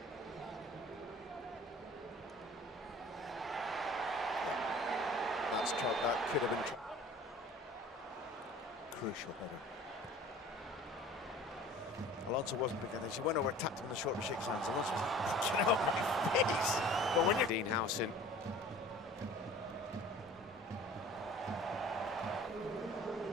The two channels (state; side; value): normal; both; correlation 0.46